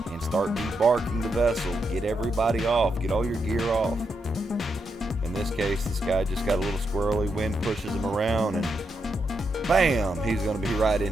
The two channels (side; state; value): both; normal; correlation 0.83